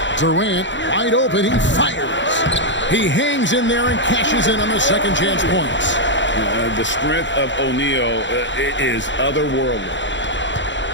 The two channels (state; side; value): late; right; 0.54 ms